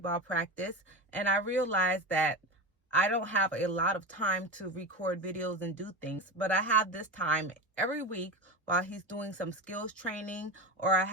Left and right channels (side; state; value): both; normal; correlation 0.22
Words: practice, and I realized that I don't have a lot of time to record videos and do things, but I have this time every week while he's doing some skills training, or I